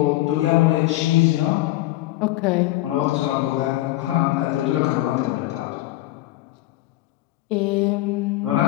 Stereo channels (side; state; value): right; quieter; 16.5 dB